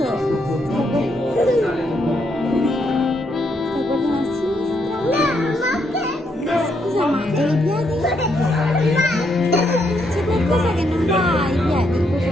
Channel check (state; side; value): normal; both; correlation 0.76